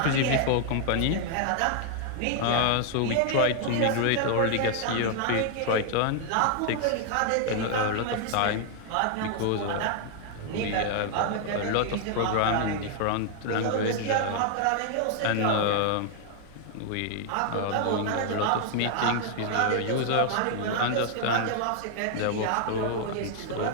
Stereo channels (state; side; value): different; both; correlation 0.00